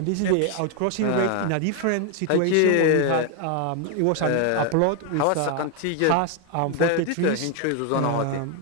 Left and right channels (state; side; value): different; both; correlation 0.01